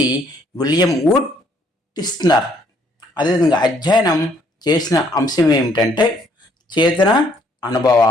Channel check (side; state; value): both; normal; correlation 0.66